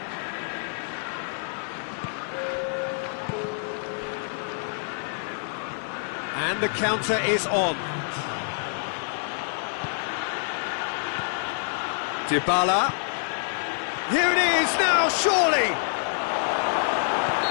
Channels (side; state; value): right; silent; digital silence